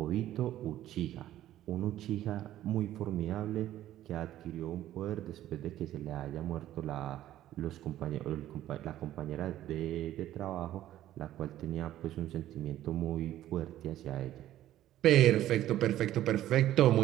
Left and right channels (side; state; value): left; quieter; 13.2 dB